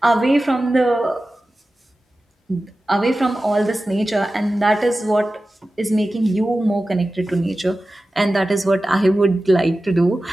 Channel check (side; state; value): both; normal; correlation 0.95